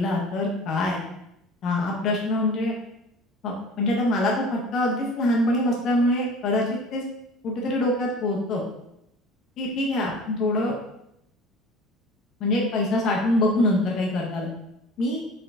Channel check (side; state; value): both; normal; correlation 0.41